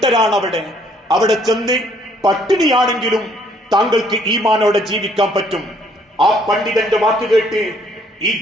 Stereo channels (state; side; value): normal; both; correlation 0.64